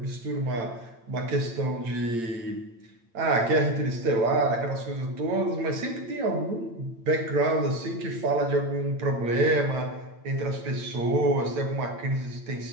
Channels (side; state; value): left; late; 8.8 ms